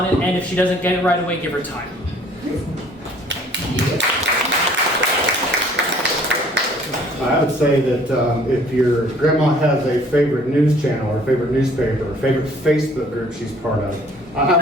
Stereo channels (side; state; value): both; normal; correlation 0.56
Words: it. And if she doesn't get it right away, give her time. I would say that if your grandma has a favorite news channel or favorite newspaper or favorite Facebook group she's part of,